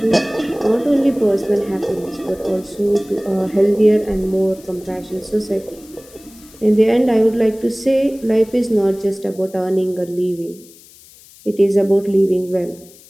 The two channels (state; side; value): noise; left; hiss, 24 dB below the sound